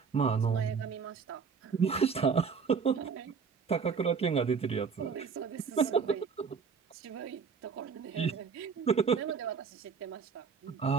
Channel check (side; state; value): left; quieter; 5.8 dB